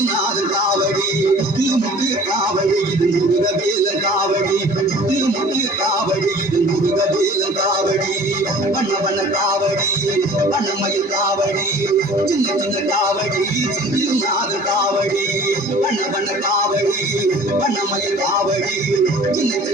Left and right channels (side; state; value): both; normal; correlation 0.47